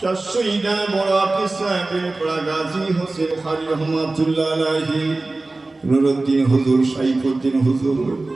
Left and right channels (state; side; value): quieter; left; 3.2 dB